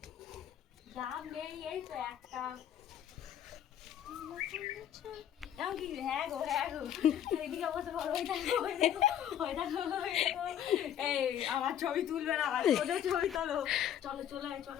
ডাব নেই এই তো একটা কি হ্যাঁ গো এদিকে বসে বড় ওই দেখো এই আমার ছবি তুলবে না ওদের ছবি তোলো চলো চলো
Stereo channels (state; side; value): quieter; right; 10.1 dB